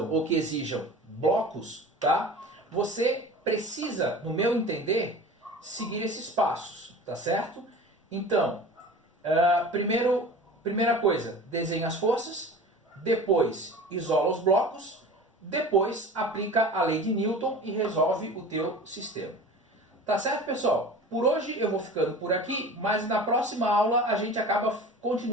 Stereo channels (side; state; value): both; normal; correlation 0.38